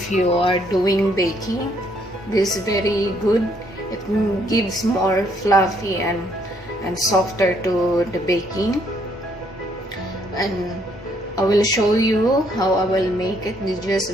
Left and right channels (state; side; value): normal; both; correlation 0.69